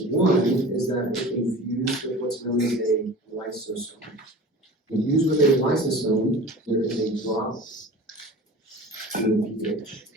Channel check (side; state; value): both; normal; correlation 0.38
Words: One is that it can fuse with what's known as a lysosome. When fused with a lysosome, there is a drop in the pH.